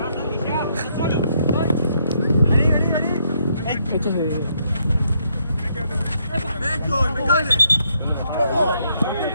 Este es de...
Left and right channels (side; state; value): both; inverted; correlation -0.73